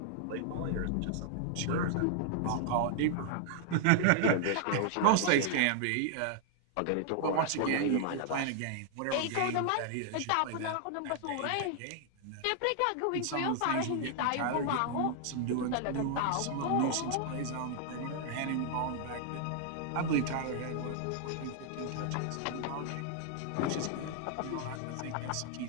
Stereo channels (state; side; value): different; both; correlation 0.00